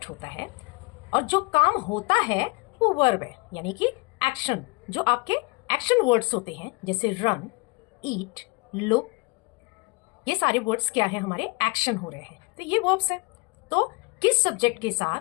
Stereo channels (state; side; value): quieter; right; 27.5 dB